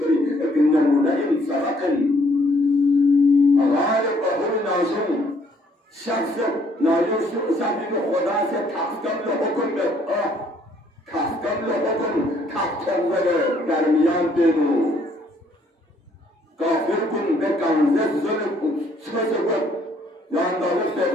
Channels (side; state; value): both; normal; correlation 0.65